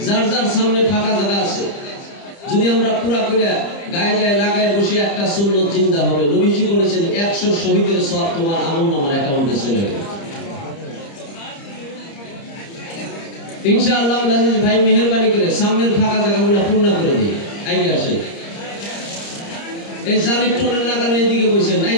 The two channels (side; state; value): right; late; 30 ms